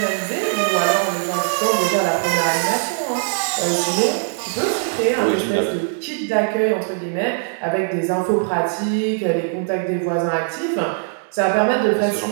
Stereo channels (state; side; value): silent; left; digital silence